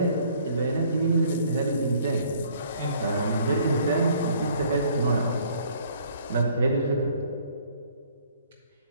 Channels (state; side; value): inverted; both; correlation -0.59